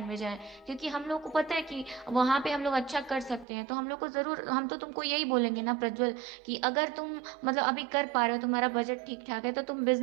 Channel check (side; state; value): left; drops out; at 3.5 s